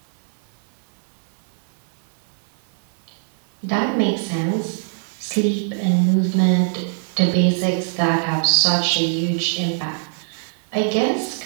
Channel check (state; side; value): silent; left; digital silence